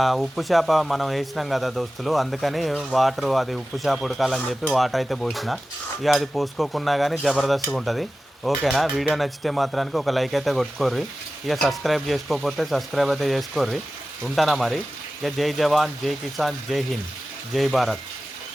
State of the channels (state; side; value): normal; both; correlation 0.95